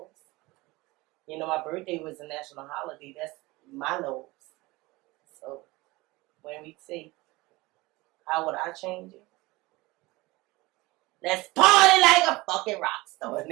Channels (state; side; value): quieter; left; 21.7 dB